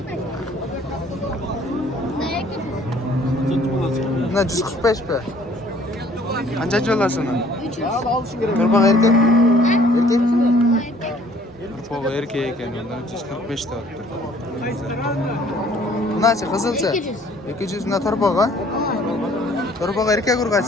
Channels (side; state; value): both; normal; correlation 0.58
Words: Buna 145 be. Qanchachi olasizmi? 300. Turpoq erkak? Erkak? Turpoq erkak ekan, undan 145 ta olibdi. Bunachi qizilcha? 200. 200 na turpoq a? Turpoq erkak